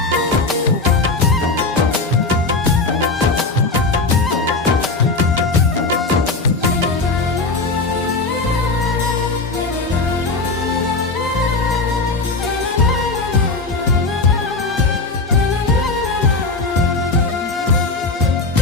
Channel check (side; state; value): right; quieter; 3.6 dB